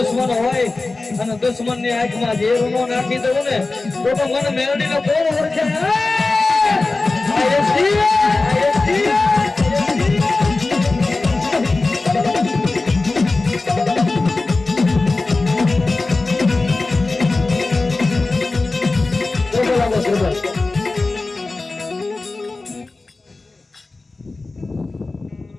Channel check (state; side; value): quieter; right; 3.4 dB